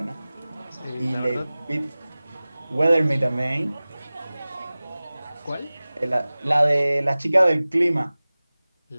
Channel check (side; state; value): both; inverted; correlation -0.98